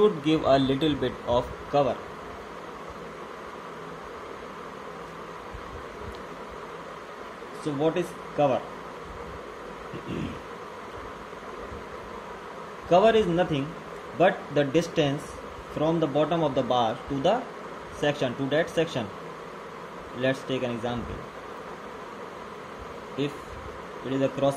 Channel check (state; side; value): identical; both; correlation 1.00